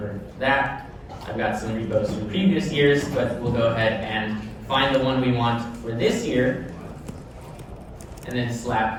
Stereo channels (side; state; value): both; identical; correlation 1.00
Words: that. I've got some repos from previous years, but we'll go ahead and find the one we want for this year, and then